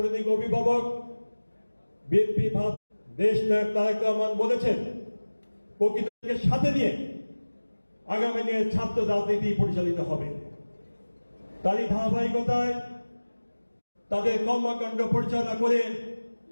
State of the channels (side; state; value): both; inverted; correlation -1.00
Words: অভিভাবক বিএনপি দেশ নায়ক তারেক রহমান বলেছেন, প্রকৃতিকে সাথে নিয়ে আগামী দিনে ছাত্র রাজনীতি পরিচালিত হবে। তারই ধারাবাহিকতায় তাদের কর্মকাণ্ড পরিচালনা করে